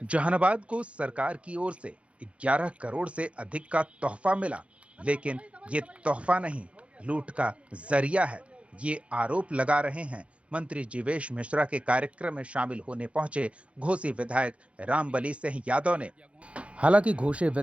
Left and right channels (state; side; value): late; left; 0.062 ms